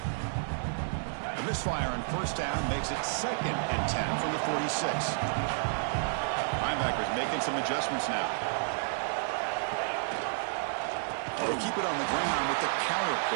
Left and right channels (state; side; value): silent; left; 57 dB below the other